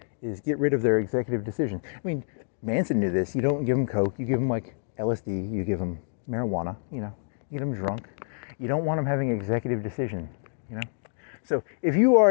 is get rid of their executive decision. I mean, Manson knew this. You don't give them coke, you give them like LSD, you give them marijuana, you get them drunk. You don't want them having executive decision, So if you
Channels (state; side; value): silent; right; digital silence